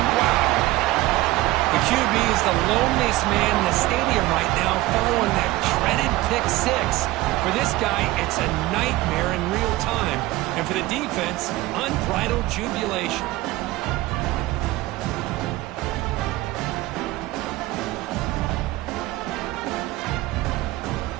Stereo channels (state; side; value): quieter; left; 18.2 dB